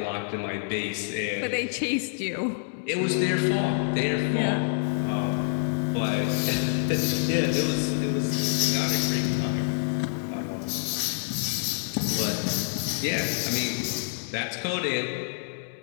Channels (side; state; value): right; silent; digital silence